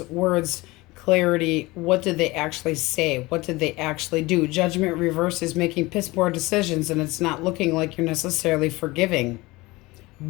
words, clarity. What did they actually say? What did they actually do? Judgment reverse is making piss poor decisions, and it's not looking like you're necessarily forgiving.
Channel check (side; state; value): right; quieter; 21.6 dB